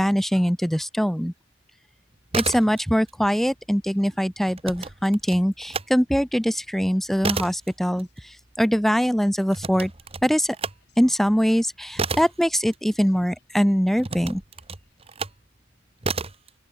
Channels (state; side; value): normal; both; correlation 0.94